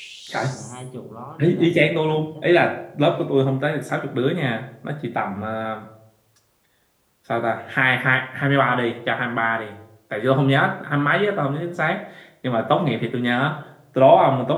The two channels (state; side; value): identical; both; correlation 1.00